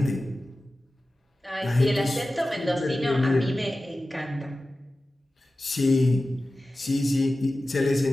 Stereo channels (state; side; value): normal; both; correlation 0.95